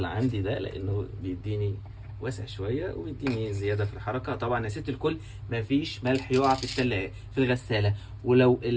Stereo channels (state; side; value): identical; both; correlation 1.00